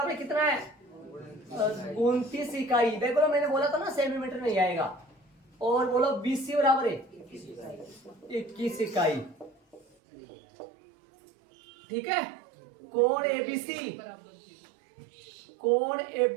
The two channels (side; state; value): left; drops out; at 9.9 s